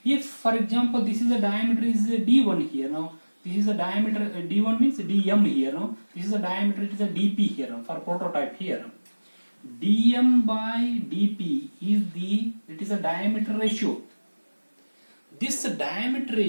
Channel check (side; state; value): both; inverted; correlation -1.00